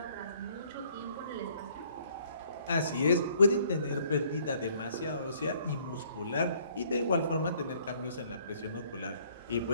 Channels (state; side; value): inverted; both; correlation -0.62